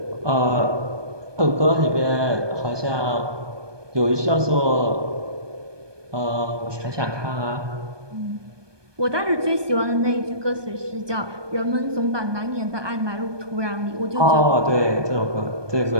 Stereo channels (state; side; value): late; left; 1.2 ms